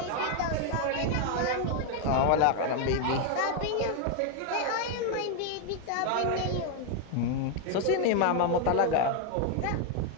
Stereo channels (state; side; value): different; both; correlation 0.01